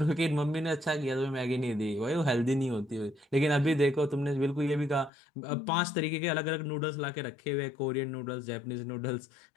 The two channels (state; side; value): drops out; right; at 5.1 s